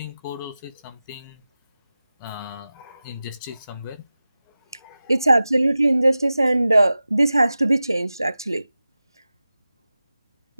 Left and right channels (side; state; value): both; inverted; correlation -0.95